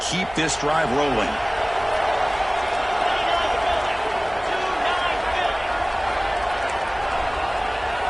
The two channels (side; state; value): right; noise; hum, 20 dB below the sound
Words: keep this drive rolling.